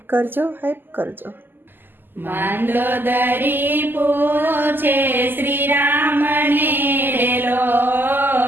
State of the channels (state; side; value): late; left; 0.093 ms